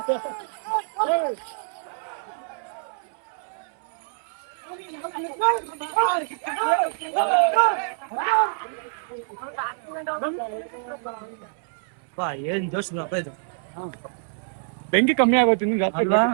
ಏನ್ ಜೋಶ್ ಇದು. ಬೆಂಕಿ ಕಮ್ಮಿ ಆಗೋಯ್ತು ನಿಮ್ಗೆ ಅಲ್ವಾ?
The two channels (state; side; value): silent; left; 61 dB below the other